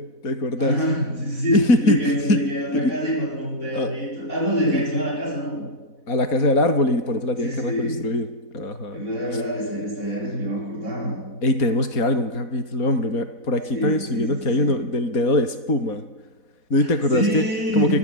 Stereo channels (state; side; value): late; right; 4.1 ms